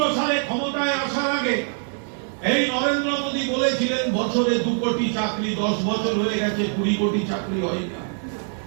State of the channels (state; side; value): silent; left; 60 dB below the other